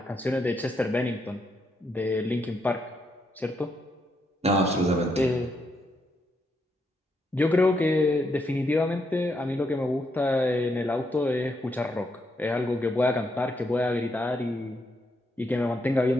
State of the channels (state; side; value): normal; both; correlation 0.79